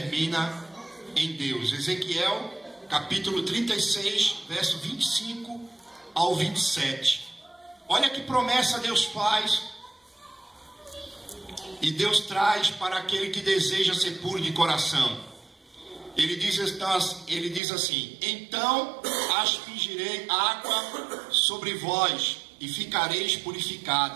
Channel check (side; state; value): left; drops out; at 17.6 s